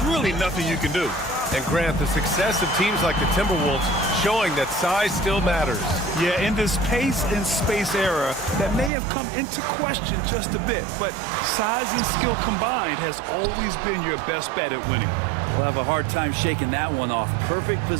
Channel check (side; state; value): left; drops out; at 8.9 s